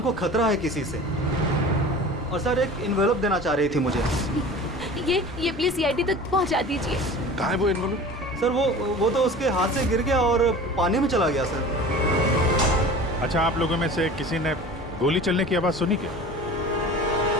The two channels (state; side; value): normal; both; correlation 0.39